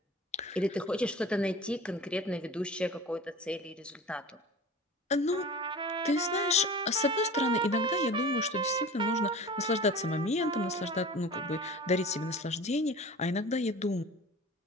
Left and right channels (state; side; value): normal; both; correlation 0.38